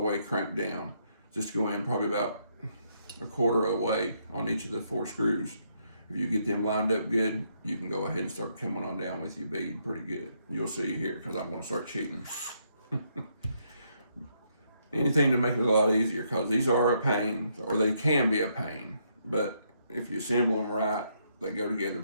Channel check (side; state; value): both; inverted; correlation -0.74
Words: cranked down. Just go in probably about a quarter away on each of the 4 screws. If you get them lined up good, you can go ahead and start coming on down with your bead pretty good. You'll see here, because I'm going to start cheating. Anything to make it a lot easier, because these are a pain, or they can be a pain. But if you assemble them right, they go together